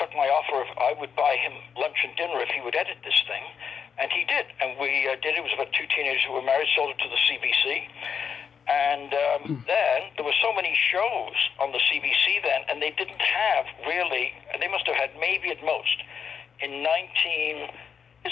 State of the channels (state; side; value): quieter; right; 6.9 dB